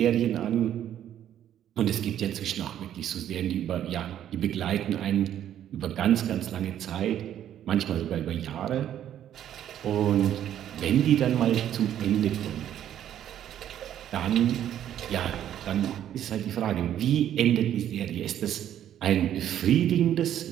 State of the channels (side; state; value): left; quieter; 10.8 dB